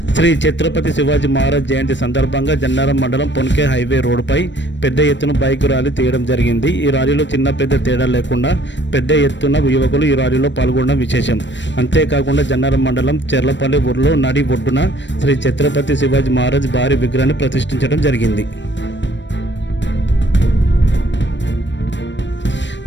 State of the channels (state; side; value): late; right; 0.53 ms